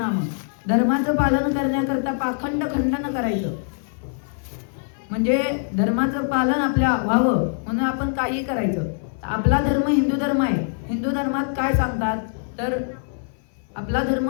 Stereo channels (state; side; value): silent; right; 56 dB below the other